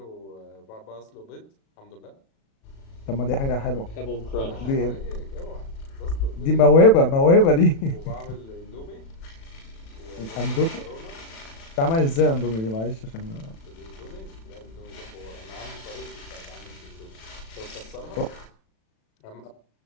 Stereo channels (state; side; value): late; right; 36 ms